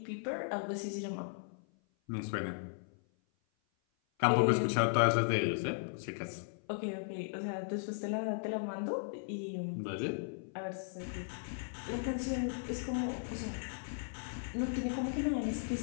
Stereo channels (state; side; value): silent; right; 53 dB below the other